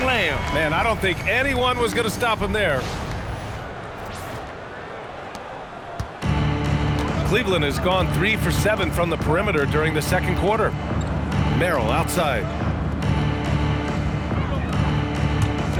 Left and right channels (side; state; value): both; identical; correlation 1.00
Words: Man, I don't think anyone was going to stop him there. Cleveland has gone 3 for 7 from the perimeter during the second quarter. Merrill outside.